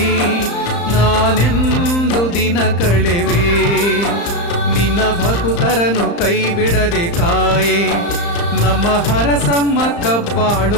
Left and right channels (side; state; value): right; late; 35 ms